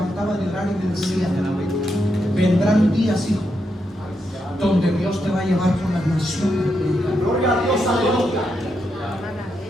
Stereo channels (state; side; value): normal; both; correlation 0.83